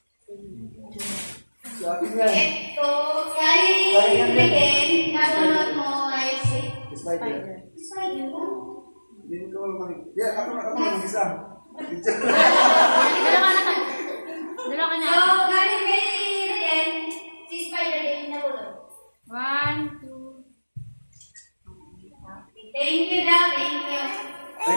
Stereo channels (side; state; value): both; inverted; correlation -1.00